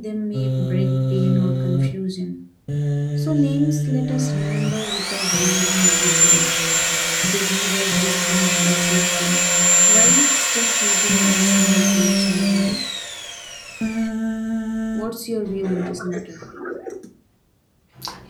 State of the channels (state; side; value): identical; both; correlation 1.00